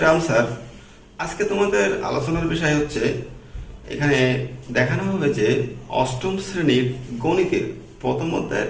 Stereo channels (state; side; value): identical; both; correlation 1.00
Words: রাম স্যার। আজকে তোমাদের আলোচনার বিষয় হচ্ছে, এখানে দেখানো হবে যে অষ্টম শ্রেণীর গণিতের প্রথম